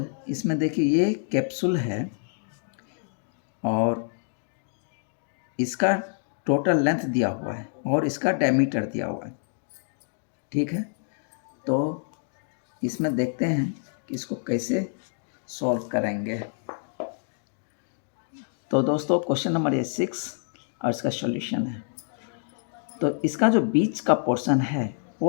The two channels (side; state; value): right; silent; digital silence